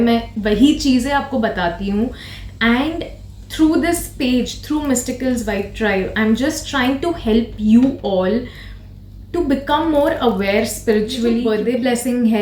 मैं वही चीज़ें आपको बताती हूँ. And through this page, through Mysticals Vibe Tribe, I'm just trying to help you all to become more aware spiritually. Birthday blessing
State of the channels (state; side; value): identical; both; correlation 1.00